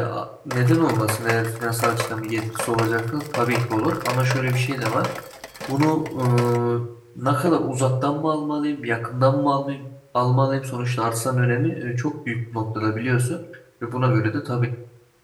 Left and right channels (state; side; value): identical; both; correlation 1.00